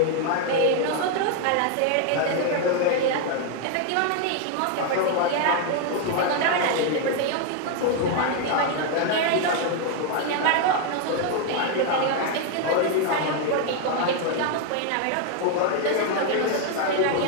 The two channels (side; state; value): both; different; correlation 0.01